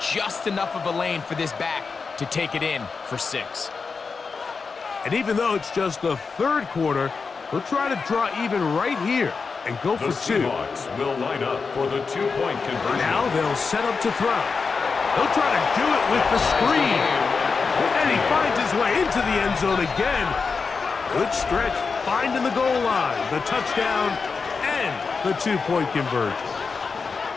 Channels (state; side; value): quieter; right; 4.9 dB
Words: enough of a lane for this back to take it in for 6. And even though it's just the 3rd quarter, they'll try to draw even right here and go for 2. The Seahawks will line up for the 2-point conversion. Now they'll set up to throw. They'll try to do it with the screen. And he finds his way into the end zone again. Good stretch, finding the goal line, the touchdown, and the 2-point conversion.